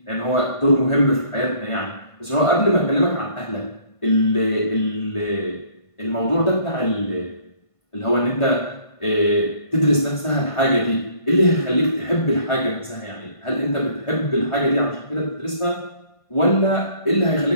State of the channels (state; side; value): late; right; 1.5 ms